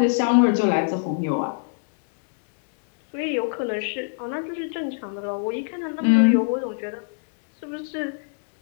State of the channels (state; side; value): silent; right; digital silence